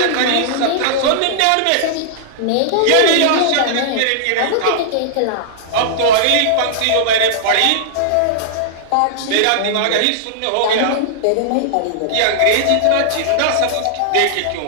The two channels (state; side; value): different; both; correlation -0.01